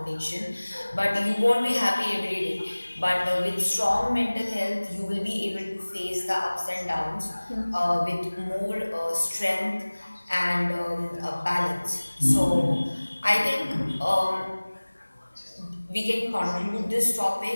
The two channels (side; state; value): both; inverted; correlation -1.00